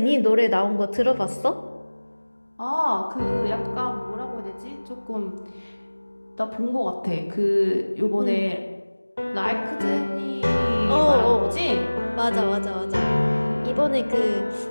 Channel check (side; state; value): both; inverted; correlation -1.00